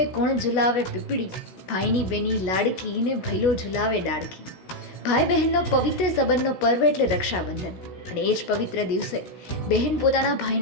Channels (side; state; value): right; late; 16 ms